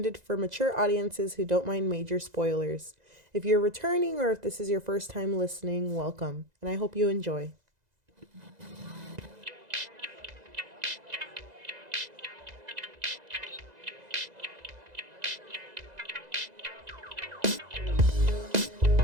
for mature audiences who don't mind major spoilers. If you're returning or if this is your first time listening, welcome, and I hope you enjoy.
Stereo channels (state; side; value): late; left; 2.0 ms